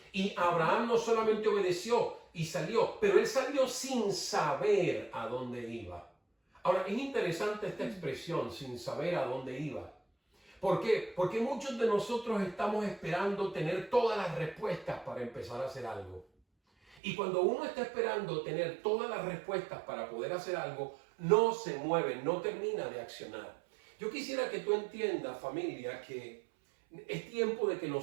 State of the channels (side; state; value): left; drops out; at 16.9 s